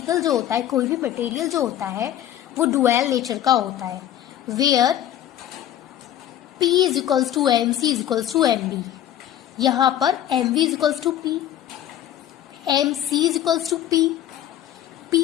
जो होता है, कोई भी मटेरियल जो होता है, वो डुअल नेचर का होता है, where P is equals to M, C is equals to M B. यहाँ पर M V is equals to P, M C is equals to P.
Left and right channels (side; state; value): right; quieter; 11.6 dB